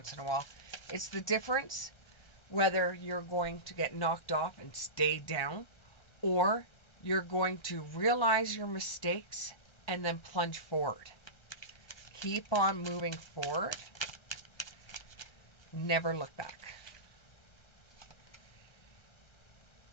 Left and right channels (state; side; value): late; right; 1.3 ms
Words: in a while. It's the difference whether you're going to get knocked off and stay down, or you're going to realize your mistakes and then plunge forward. Keep on moving forward. Never look back.